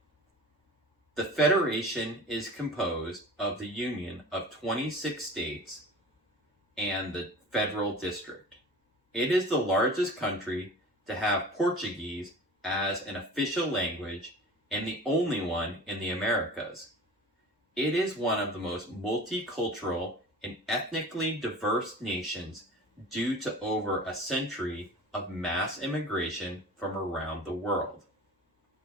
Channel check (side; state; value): both; normal; correlation 0.38